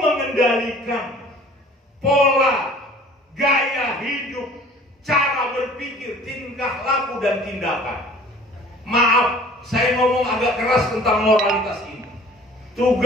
pola gaya hidup, cara berpikir, tingkah laku dan tindakan. Maaf, saya ngomong agak keras tentang moralitas ini.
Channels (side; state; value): both; normal; correlation 0.49